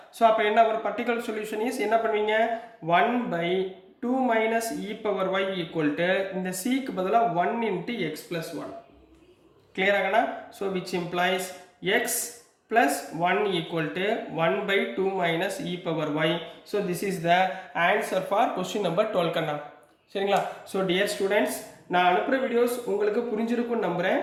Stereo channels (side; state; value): both; identical; correlation 1.00